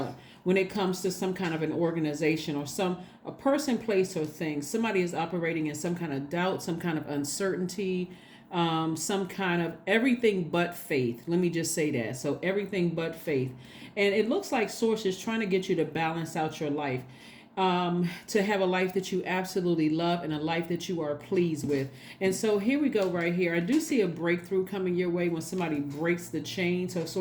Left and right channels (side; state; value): both; identical; correlation 1.00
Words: when it comes to some kind of an organization or a person, place, or thing. Somebody is operating in some kind of doubt, some kind of uncertainty, some kind of everything but faith. Let me just say that. So everything but faith. And it looks like Source is trying to get you to balance out your life. To have a life that you absolutely love and a life that you are pleased with. And so here we go right here. I do see a breakthrough coming your way when somebody breaks the chain. So